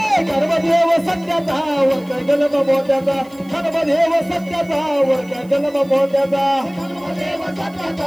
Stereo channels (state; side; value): noise; right; hiss, 28 dB below the sound